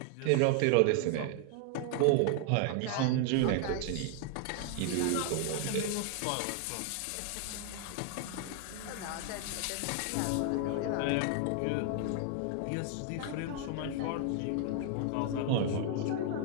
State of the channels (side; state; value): both; different; correlation 0.00